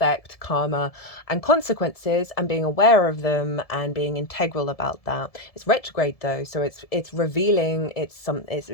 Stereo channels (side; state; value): right; late; 1.7 ms